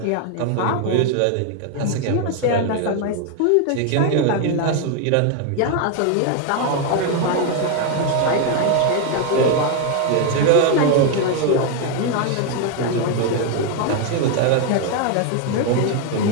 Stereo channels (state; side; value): different; both; correlation 0.01